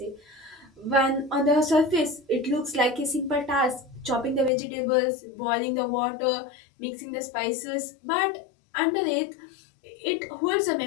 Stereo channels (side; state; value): right; drops out; at 4.5 s